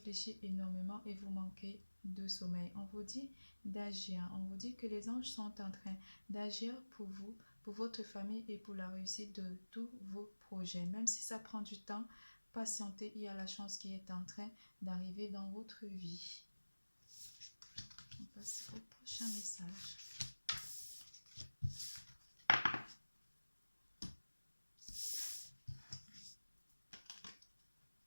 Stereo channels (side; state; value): both; inverted; correlation -1.00